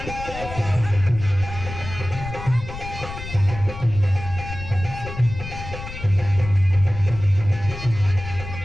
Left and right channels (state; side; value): noise; left; rumble, 10 dB below the sound